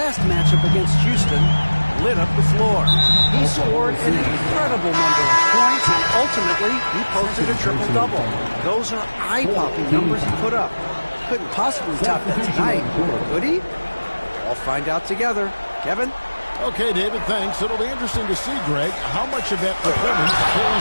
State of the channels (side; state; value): both; inverted; correlation -1.00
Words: matchup against Houston, lit up the floor. He scored an incredible number of points, and ultimately, he posted a triple-double. Those are eye-popping numbers he put up. Couldn't possibly top that tonight, could he? We'll find out together. Kevin? Okay, David, thanks. It'll be interesting to see, Greg, how much of that performance